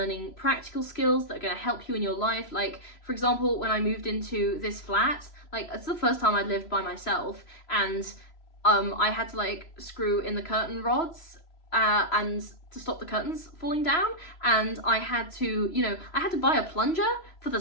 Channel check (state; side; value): late; right; 3.0 ms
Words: practical skills that are going to help you in your life. Like, for example, when I moved into this flat, it's the first time I'd lived by myself, and I had to screw in the curtain rods and to stop the curtains falling down, and I had to buy a plunger for the